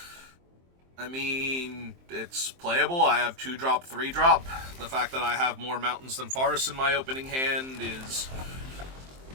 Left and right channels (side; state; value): left; late; 23 ms